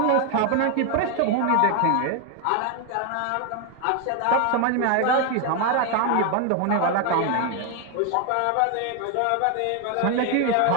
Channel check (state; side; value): different; both; correlation 0.01